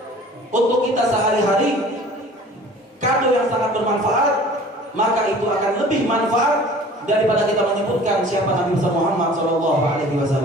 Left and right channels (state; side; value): normal; both; correlation 0.47